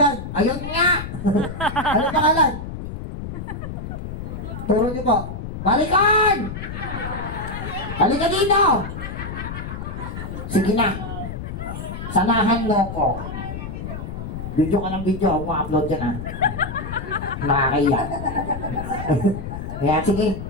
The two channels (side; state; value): left; noise; rumble, 7 dB below the sound